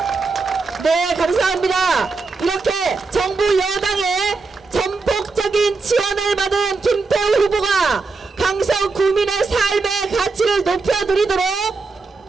네, 감사합니다. 이렇게 정부 여당의 전폭적인 지원을 받은 김태우 후보가 강서 구민의 삶의 가치를 높여드리도록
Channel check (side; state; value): left; quieter; 4.1 dB